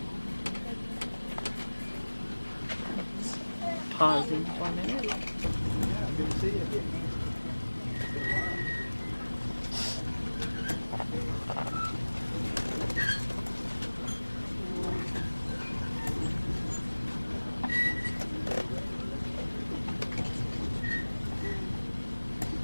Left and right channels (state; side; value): inverted; both; correlation -1.00